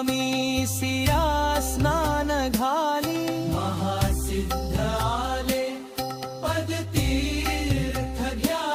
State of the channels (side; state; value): both; identical; correlation 1.00